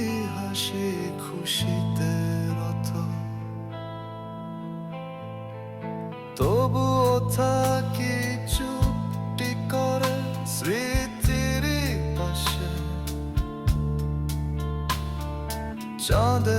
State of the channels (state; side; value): identical; both; correlation 1.00